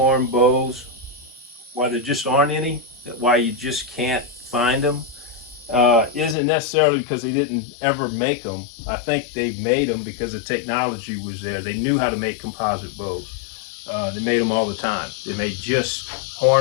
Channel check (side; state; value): right; drops out; at 6.4 s